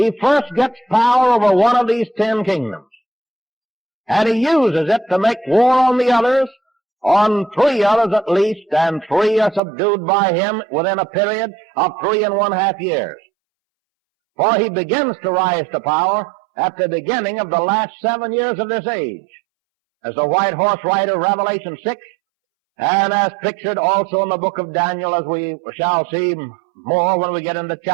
first gets power over one of these 10 kingdoms, and he uses it to make war on the others, on 3 others at least, and 3 are subdued by him within a period of 3½ years. For he begins to rise to power at the beginning of the last 7 years of this age, as the white horse rider, Revelation 6, and as pictured also in the book of Daniel, as we shall see more when we get into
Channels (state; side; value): drops out; left; at 9.6 s